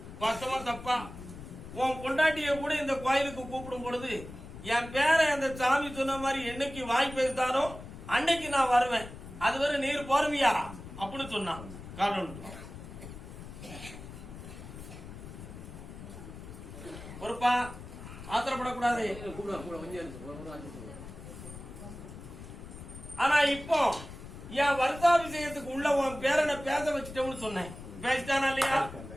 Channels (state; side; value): noise; left; rumble, 13 dB below the sound